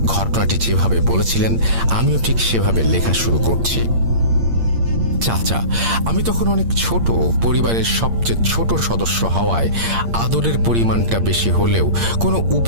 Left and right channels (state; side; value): late; left; 8.7 ms